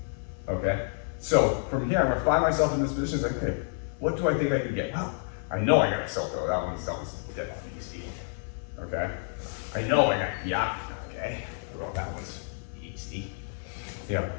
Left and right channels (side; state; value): right; silent; 58 dB below the other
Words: okay? So from here, I'm gonna find myself in this position, it's like, okay, what do I think I can get? Well, I know I got a Silko, that one's dead on easy, okay? I know I got Yak, okay? Well, that one's easy. Yeah,